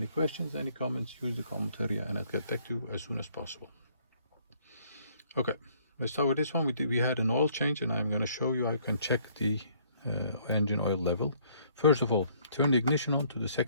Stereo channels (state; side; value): inverted; both; correlation -0.63